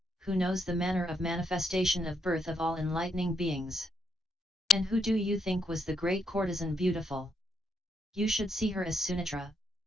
who knows the manner of manifestation of birth of all enlightening beings. And who do you think was the great courtesan beautiful? You should see her as Sunitra,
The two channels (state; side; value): normal; both; correlation 0.77